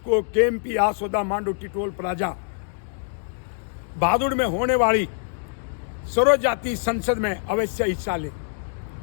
केएमपी आसोदा मांडोटी टोल प्लाजा बहादुर में होने वाली सर्व जाति संसद में अवश्य हिस्सा लें।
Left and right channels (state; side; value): silent; right; digital silence